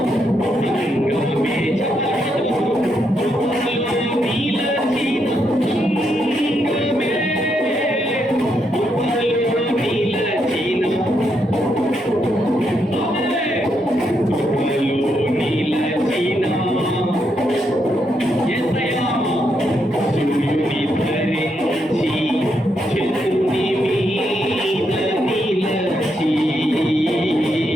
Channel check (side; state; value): both; normal; correlation 0.79